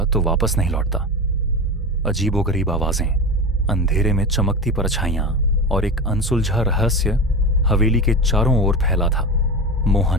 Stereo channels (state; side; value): normal; both; correlation 0.24